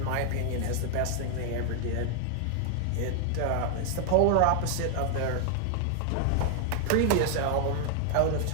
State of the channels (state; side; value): different; both; correlation 0.00